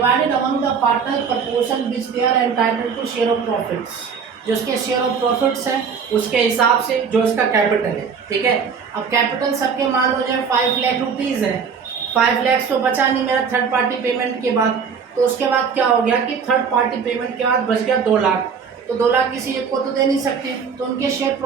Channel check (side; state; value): left; quieter; 6.2 dB